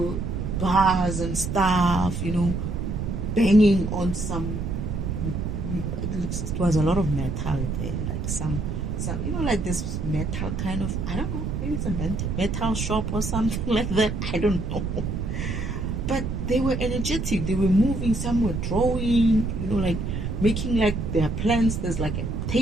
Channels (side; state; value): right; noise; rumble, 3 dB below the sound